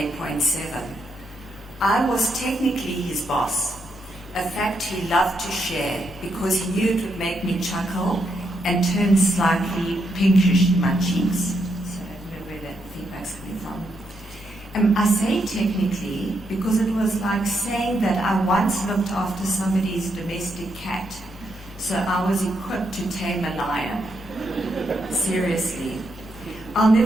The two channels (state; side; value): normal; both; correlation 0.80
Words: I was technically his boss, a fact he loved to share because he knew it would make me chuckle and turn slightly pinkish in my cheeks. So I don't know where that feedback's coming from. I say technically because it was like saying that I once looked after somebody's domestic cat, so I was equipped to tame a lion. Seriously. I'll